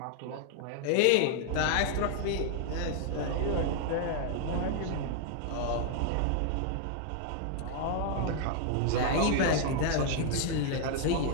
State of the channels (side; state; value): both; different; correlation 0.00